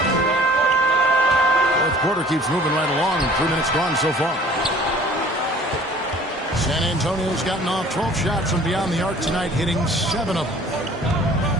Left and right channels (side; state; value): both; normal; correlation 0.50